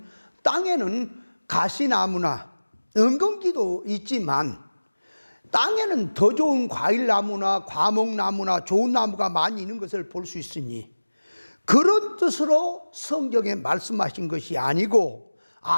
땅에는 가시나무나 엉겅기도 있지만 땅에는 더 좋은 과일나무나 과목나무나 좋은 나무가 많이 있는 것을 볼 수 있으니, 그런 뜻으로 성경에 말씀하신 것이 아니고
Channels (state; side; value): inverted; both; correlation -1.00